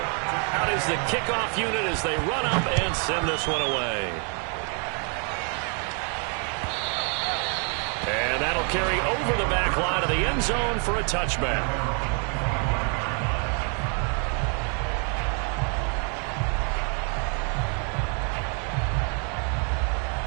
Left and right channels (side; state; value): left; quieter; 39.9 dB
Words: Out is the kickoff unit as they run up and send this one away. And that'll carry over the back line of the end zone for a touchback.